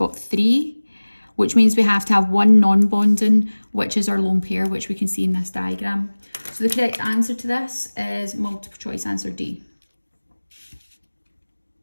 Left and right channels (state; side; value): inverted; both; correlation -1.00